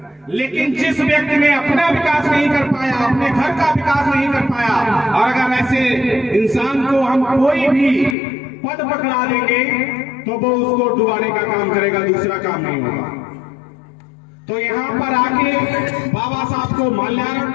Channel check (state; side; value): drops out; right; at 8.2 s